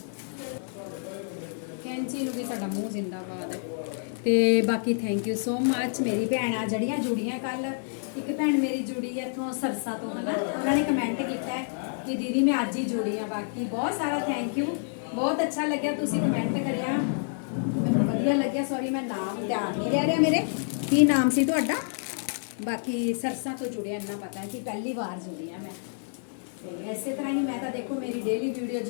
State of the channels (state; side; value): silent; right; digital silence